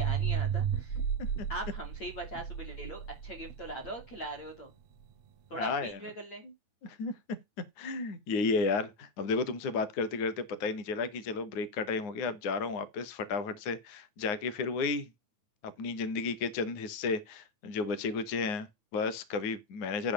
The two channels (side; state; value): right; late; 9.6 ms